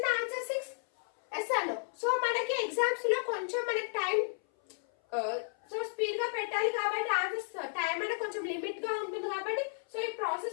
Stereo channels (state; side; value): silent; right; 56 dB below the other